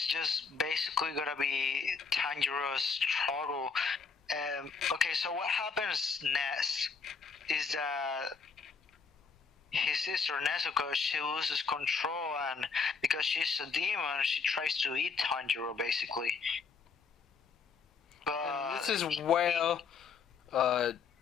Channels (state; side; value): quieter; right; 5.4 dB